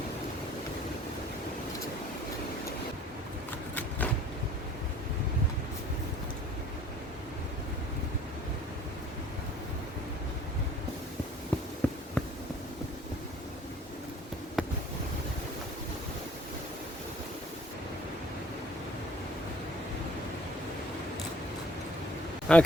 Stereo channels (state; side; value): normal; both; correlation 0.54